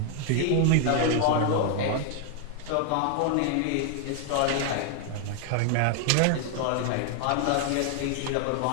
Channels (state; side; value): different; both; correlation 0.00